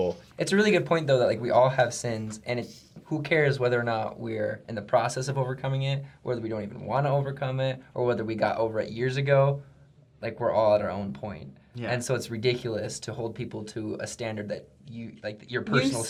It's a really good point, though, that like we all have sins, and who cares whether or not we're in the process of overcoming it, whether we don't even want to overcome it, or whether we got over it years ago. Like, we're all at our own point. Yeah. And so it's ridiculous to hold people to a standard that you, like, your personal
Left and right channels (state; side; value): identical; both; correlation 1.00